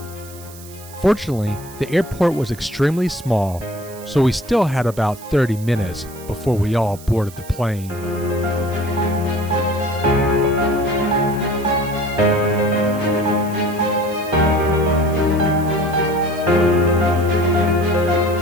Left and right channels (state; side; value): noise; right; hiss, 19 dB below the sound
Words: Fortunately, the airport was extremely small, so we still had about 30 minutes before we all boarded the plane.